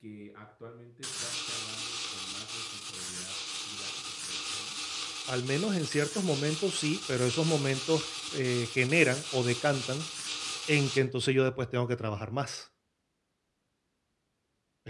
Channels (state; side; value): identical; both; correlation 1.00